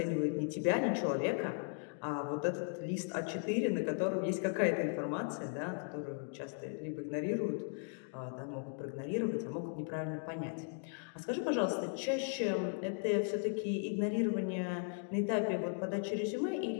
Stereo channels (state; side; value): silent; right; 53 dB below the other